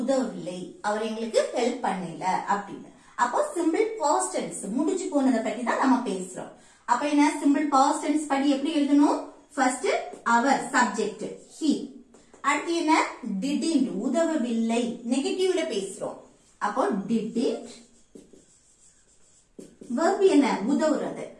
உதவவில்லை, அவர் எங்களுக்கு ஹெல்ப் பண்ணல அப்படின்னு. அப்போ சிம்பிள் பாஸ்ட் டென்ஸ் முடிஞ்சு போனதை பத்தி தான் நம்ம பேசுறோம். அப்ப என்ன? சிம்பிள் பாஸ்ட் டென்ஸ் படி எப்படி எழுதணும்? ஃபர்ஸ்ட் அவர் சப்ஜெக்ட் he. அடுத்து என்ன? didn't உதவவில்லை, நெகட்டிவ்ல பேசுறோம். அப்போ didn't. verb என்ன? உதவுறது.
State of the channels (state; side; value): identical; both; correlation 1.00